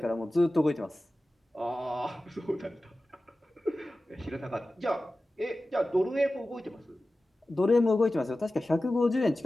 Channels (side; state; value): both; normal; correlation 0.95